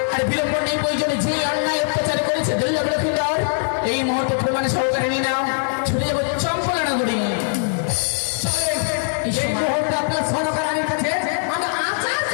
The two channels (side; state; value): right; silent; digital silence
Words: আর বিলম্ব নেই প্রয়োজনে যে অন্যায় অত্যাচার করেছে দুর্লভ লক্ষ্মীন্দর এই মুহূর্তে প্রমাণে সহকারে নিয়ে নাও ছুটে যাবো চম্পলা নগরী এই মুহূর্তে আপনার সরকারের কাছে আমরা আচার